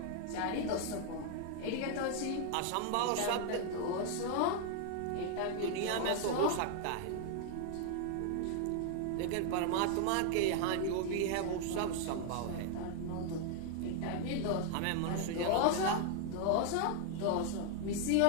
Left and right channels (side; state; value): both; different; correlation 0.00